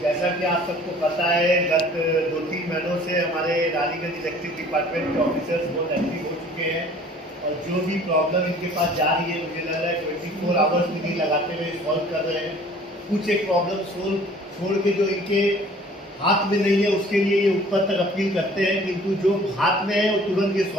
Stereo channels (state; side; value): normal; both; correlation 0.51